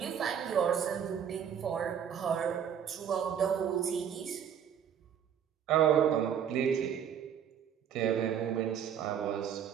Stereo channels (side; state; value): left; quieter; 8.5 dB